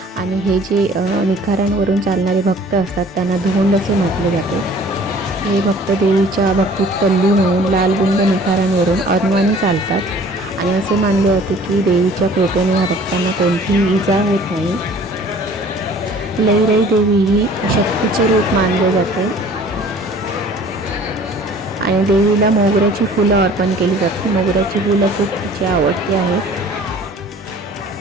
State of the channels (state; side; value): normal; both; correlation 0.50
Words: आणि हे जे निखाऱ्यांवरून चालणारे भक्त असतात त्यांना धोंड असे म्हटले जाते. हे भक्त देवीच्या भक्तीत तल्लीन होऊन लालबुंद निखाऱ्यांवरून अनवाणी चालतात आणि असे मानले जाते की देवीच्या कृपेने या भक्तांना कोणतीही इजा होत नाही. लईराई देवी ही शक्तीचे रूप मानले जाते. आणि देवीला मोगऱ्याची फुलं अर्पण केली जातात. मोगऱ्याची फुलं खूप तिची आवडती आहेत.